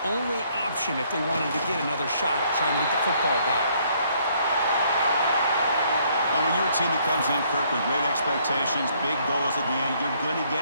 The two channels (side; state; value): both; inverted; correlation -0.66